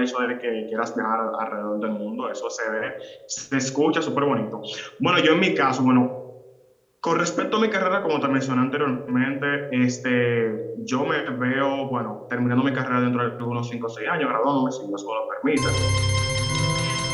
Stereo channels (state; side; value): identical; both; correlation 1.00